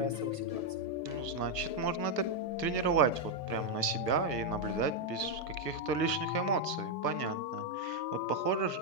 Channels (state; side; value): late; right; 1.4 ms